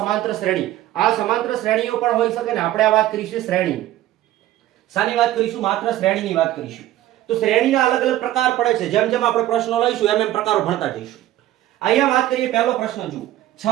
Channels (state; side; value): quieter; left; 14.2 dB